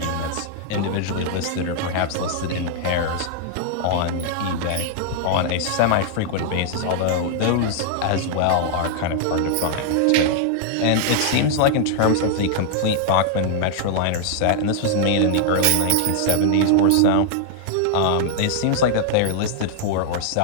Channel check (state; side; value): different; both; correlation -0.01